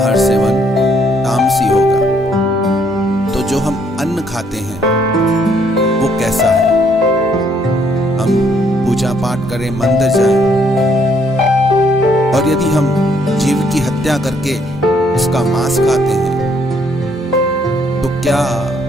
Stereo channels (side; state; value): both; normal; correlation 0.68